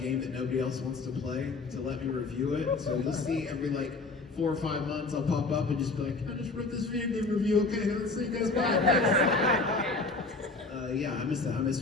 that nobody else wants to play to let me review it. So you'll see every like 4 or 5 months I'll pop up and just be like, I just wrote this video game review. Okay, let's see you guys back. Yeah, I miss that. I miss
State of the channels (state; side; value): quieter; right; 3.6 dB